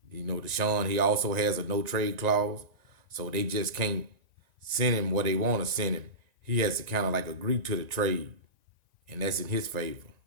Deshaun, he also has a no trade clause, so they just can't send him where they want to send him. He has to kind of like agree to the trade, and that's in his favor.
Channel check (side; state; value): left; late; 1.9 ms